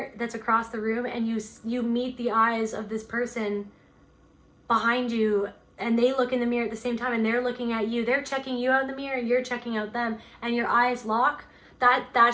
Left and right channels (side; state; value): both; identical; correlation 1.00